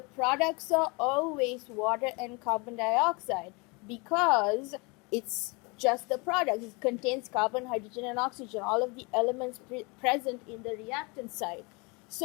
products are always water and carbon dioxide because it's just the product. It contains carbon, hydrogen, and oxygen, all of the elements present in the reactant side.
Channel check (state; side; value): quieter; right; 28.9 dB